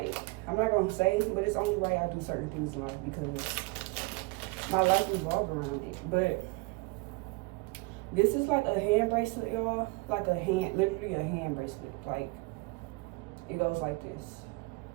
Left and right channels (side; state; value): left; quieter; 25.6 dB